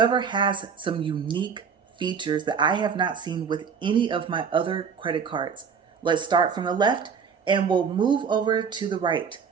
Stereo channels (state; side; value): quieter; left; 6.4 dB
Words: has some unique features that I have not seen with any of my other credit cards. Let's start from the left and we'll move over to the right.